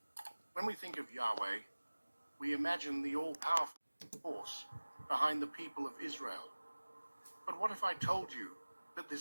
When we think of Yahweh, we imagine the all-powerful force behind the people of Israel. But what if I told you that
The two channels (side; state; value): both; inverted; correlation -1.00